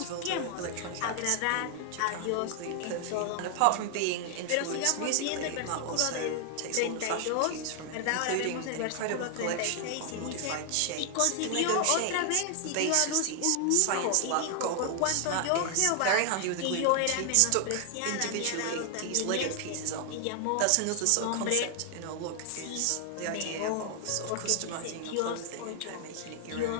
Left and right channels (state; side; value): different; both; correlation 0.00